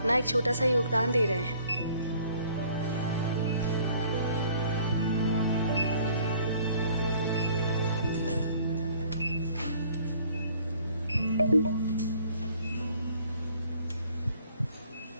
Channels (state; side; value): inverted; both; correlation -0.57